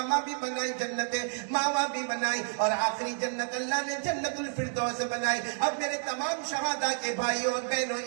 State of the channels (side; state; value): left; silent; digital silence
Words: भी बनाई, जन्नत मावा भी बनाई और आखिरी जन्नत अल्लाह ने जन्नतुल फिरदौस बनाई। अब मेरे तमाम शहादा के भाइयों और बहनों